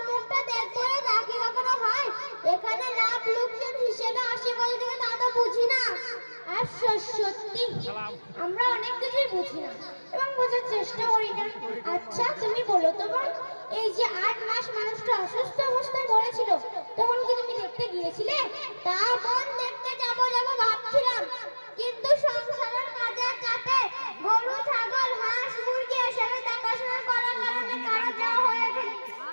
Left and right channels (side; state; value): both; inverted; correlation -1.00